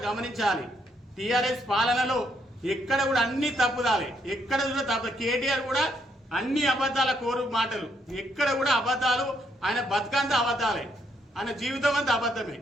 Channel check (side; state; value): both; normal; correlation 0.74